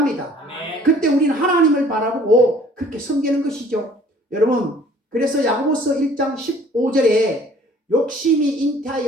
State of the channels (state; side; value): normal; both; correlation 0.54